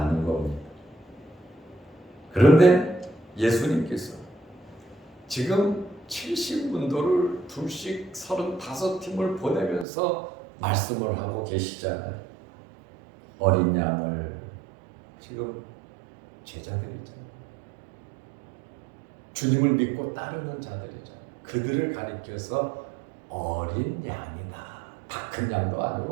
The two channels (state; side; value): drops out; left; at 9.9 s